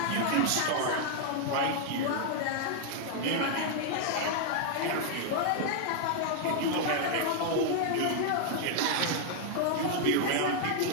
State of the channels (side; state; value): both; different; correlation 0.00